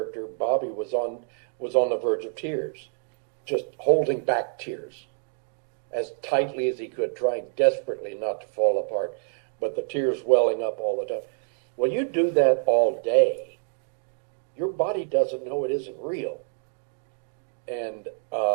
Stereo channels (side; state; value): left; silent; digital silence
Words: Bobby was on the verge of tears, just holding back tears as tightly as he could, trying desperately not to fall apart, but the tears welling up all the time. Well, you do that all day, your body doesn't know it isn't real. And